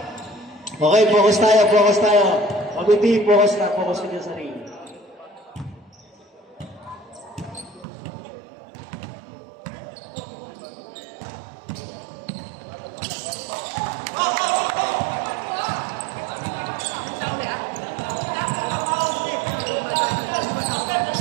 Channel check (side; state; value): left; drops out; at 7.9 s